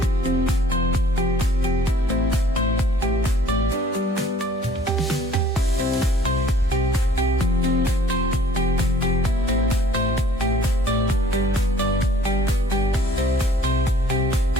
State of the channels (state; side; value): normal; both; correlation 0.55